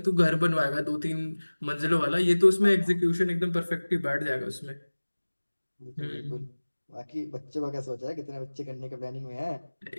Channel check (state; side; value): inverted; both; correlation -1.00